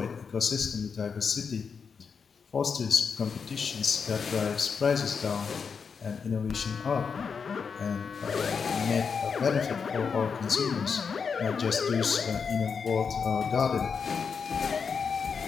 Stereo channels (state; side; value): quieter; right; 5.9 dB